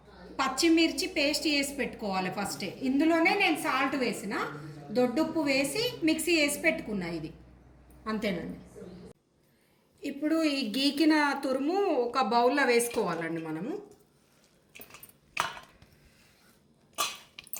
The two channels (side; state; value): both; identical; correlation 1.00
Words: పచ్చిమిర్చి పేస్ట్ చేసి పెట్టుకోవాలి ఫస్టే. ఇందులోనే నేను సాల్ట్ వేసిన, దొడ్డుప్పు వేసి మిక్సీ వేసి పెట్టుకున్నా. ఇది అంతేనండి. ఇప్పుడు ఈ గీకిన తురుము ఒక బౌల్లో వేసుకోవాలండి. మనము